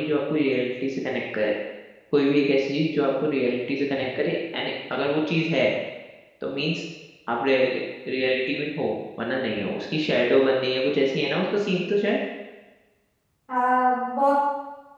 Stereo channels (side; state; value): both; identical; correlation 1.00